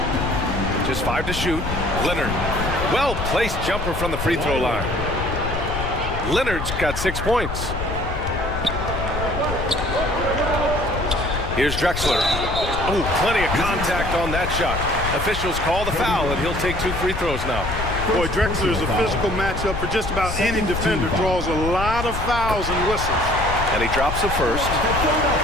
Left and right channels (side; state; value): left; noise; rumble, 5 dB below the sound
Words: Just 5 to shoot. Leonard. Well-placed jumper from the free throw line. Leonard's got 6 points. Here's Drexler. Oh, plenty of contact on that shot. Officials call the foul, and he'll take 2 free throws now. Boy, Drexler is a physical matchup for just about any defender. Draws a lot of fouls and whistles. And he drops the first.